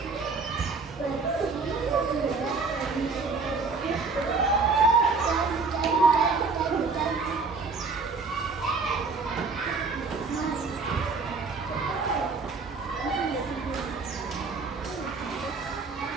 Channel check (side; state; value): left; quieter; 4.3 dB